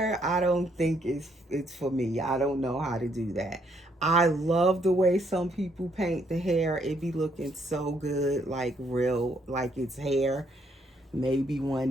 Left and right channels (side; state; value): both; normal; correlation 0.71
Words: I don't think it's for me. I don't know how to do that. I love the way some people paint the hair. It be looking so good, like real, like it's hair. Maybe one